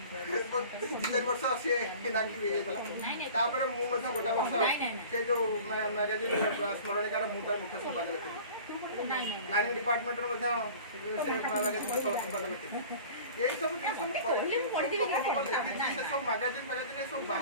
2-4 ବର୍ଷ ସିଏ ଇନାକ୍ଟିଭ୍ ହେଇଯାଇଥିଲା ତାପରେ ମୁଁ ମଧ୍ୟ ଗୋଟେ ବର୍ଷ ସେ ଯେଉଁ ମ୍ୟାଗାଜିନ୍ ସ୍ମରଣିକାର ମୁଁ ତାର ମୁଖ୍ୟ ସମ୍ପାଦକ ଥିଲି ପ୍ଲାନିଂ ଡିପାର୍ଟମେଣ୍ଟର ମଧ୍ୟ ସେ ମ୍ୟାଗାଜିନ୍ର ସହ ସମ୍ପାଦକ ଥିଲେ। ଏଇ ସବୁ ଜିନିଷ ମୁଁ କରିଛି, ସେ ସବୁ ମ୍ୟାଗାଜିନ୍ ସବୁ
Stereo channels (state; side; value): inverted; both; correlation -0.42